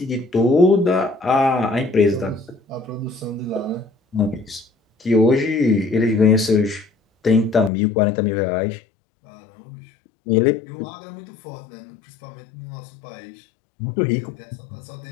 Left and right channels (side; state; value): right; drops out; at 7.7 s